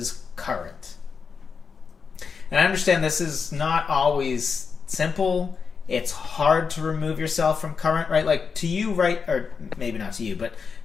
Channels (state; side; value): quieter; right; 5.6 dB